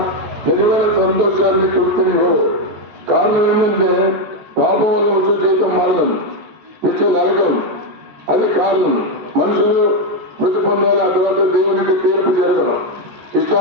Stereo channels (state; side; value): late; left; 14 ms